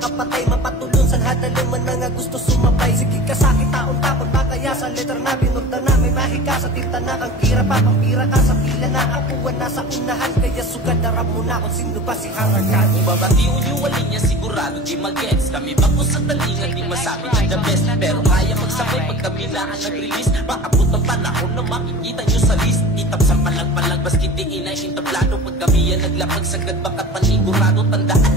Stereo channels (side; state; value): both; normal; correlation 0.37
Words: Mapatulong sa hadaluman mga gusto sumabay. Sige ka sakit taon tapon makaya sa letter na binurda na. May mahika sa tinta na kang kira pa. Pampira ka sa pila na akuan na sa unahan. Kaya sugad darap mo na kung sino ba si Harakan. Babatiun yung walin niya sigurado di mag-gets. Kami bako sa talingan di masabi ng the best. Pero kaya magsabay pag kami na ang nag-release. Maabot ang panahon na makikita nyo sa list. Itap sa palag-palag baski di inaintablado. Pag kami yan naglapag sagad bakat panigurado. Tandaan